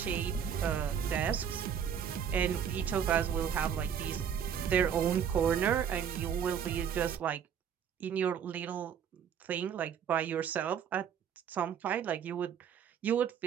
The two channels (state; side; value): quieter; left; 8.2 dB